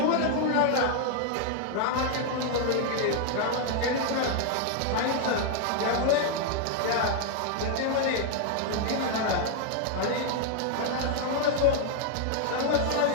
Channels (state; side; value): different; both; correlation 0.00